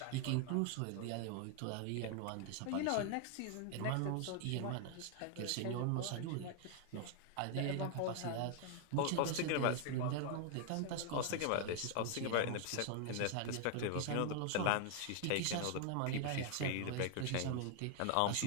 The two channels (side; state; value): both; different; correlation 0.00